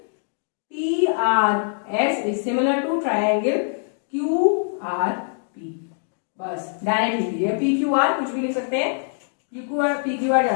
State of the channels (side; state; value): right; silent; digital silence